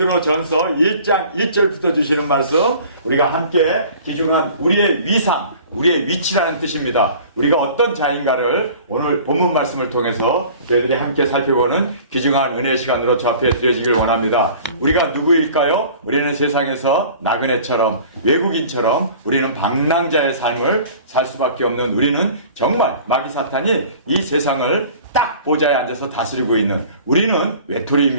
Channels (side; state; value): both; inverted; correlation -0.46